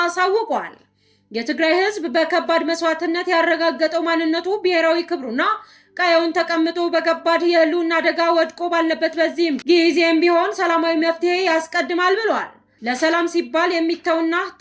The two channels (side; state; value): both; identical; correlation 1.00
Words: የትግራይ ህዝብ በከባድ መስዋዕትነት ያረጋገጠው ማንነቱ ብሔራዊ ክብሩና ቀየውን ተቀምጦ በከባድ የህልውና አደጋ ወድቆ ባለበት በዚህም ጊዜም ቢሆን ሰላማዊ መፍትሄ ያስቀድማል ብለዋል። ለሰላም ሲባል የሚተውና